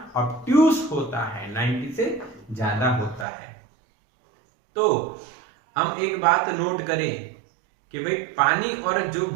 ऑब्ट्यूस होता है, 90 से ज्यादा होता है। तो हम एक बात नोट करें कि भाई पानी और जो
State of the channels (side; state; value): left; drops out; at 3.2 s